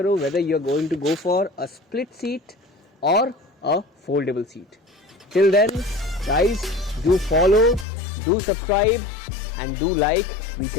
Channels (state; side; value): drops out; right; at 7.9 s